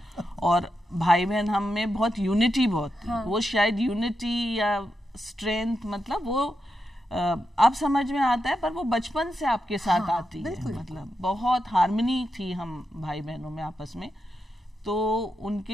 और भाई बहन हम में बहुत यूनिटी बहुत थी। वो शायद यूनिटी या स्ट्रेंथ, मतलब वो अब समझ में आता है, पर वो बचपन से आपके साथ आती है। मतलब बहुत हार्मनी थी हम भाई बहनों में आपस में। तो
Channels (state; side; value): normal; both; correlation 0.87